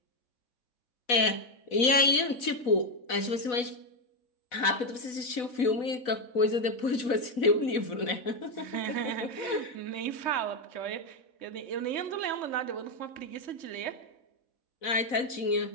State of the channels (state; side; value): late; right; 4.1 ms